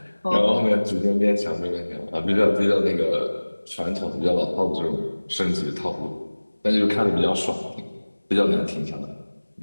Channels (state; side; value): inverted; both; correlation -1.00